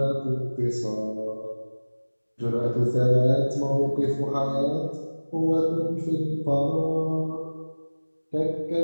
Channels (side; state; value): both; inverted; correlation -1.00